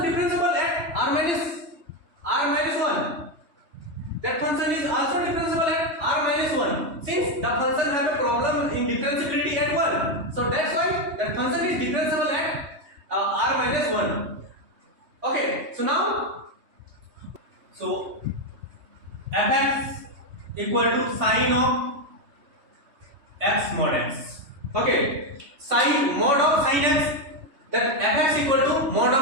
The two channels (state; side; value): late; left; 3.2 ms